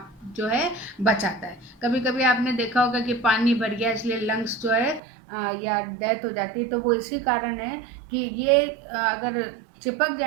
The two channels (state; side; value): drops out; left; at 5.0 s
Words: जो है बचाता है। कभी कभी आपने देखा होगा कि पानी भर गया इसलिए लंग्स जो है या डेथ हो जाती है, तो वो इसी कारण है कि ये अगर चिपक